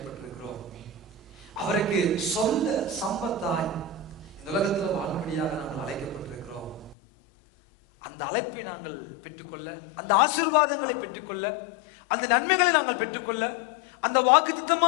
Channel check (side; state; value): right; drops out; at 7.0 s